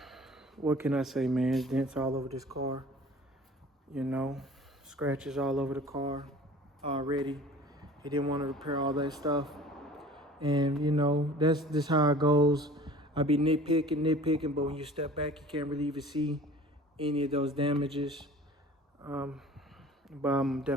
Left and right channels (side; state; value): both; normal; correlation 0.45